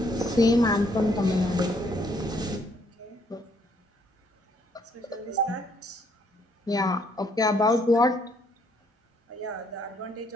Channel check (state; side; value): normal; both; correlation 0.68